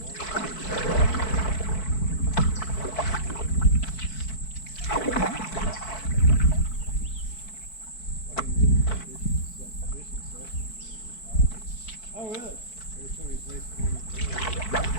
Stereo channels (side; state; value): right; late; 4.6 ms